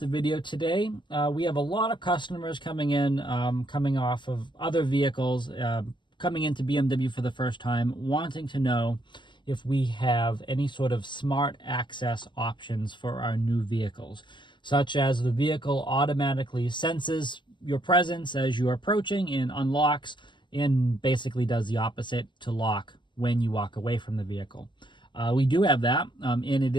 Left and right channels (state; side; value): late; right; 0.22 ms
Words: video today. We have a lot of customers coming in, coming off of other vehicles, coming into BMW for the first time, wanting to know if we have any sort of smart access options for our new vehicles, such as the vehicle automatically senses your presence as you are approaching and unlocks, and basically does the opposite to lock when you walk away from the vehicle. We do have that, and it